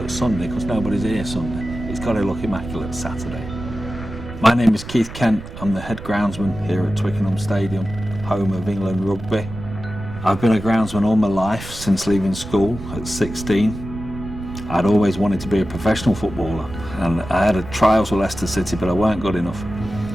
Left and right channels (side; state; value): right; noise; rumble, 13 dB below the sound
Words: Sunday because nobody's here Sunday. It's got to look immaculate Saturday. My name is Keith Kent. I'm the head groundsman here at Twickenham Stadium, home of England rugby. I've been a groundsman all my life since leaving school at 16. I'd always wanted to be a professional footballer, and I had a trials with Leicester City, but I weren't good enough.